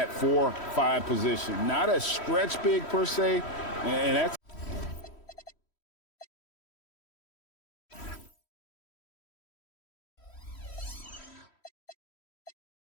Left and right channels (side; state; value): right; late; 3.1 ms